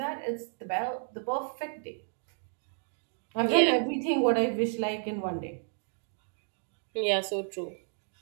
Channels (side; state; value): left; silent; 57 dB below the other